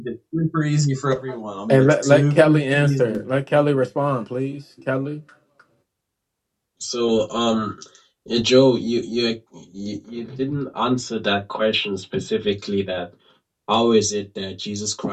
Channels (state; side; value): identical; both; correlation 1.00